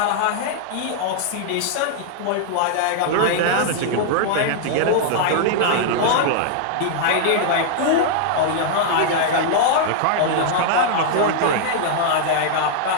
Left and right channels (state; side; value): different; both; correlation -0.01